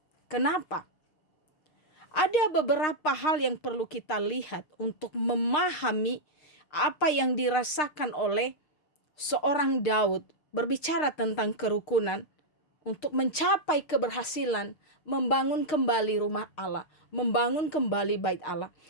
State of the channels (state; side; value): late; right; 6.6 ms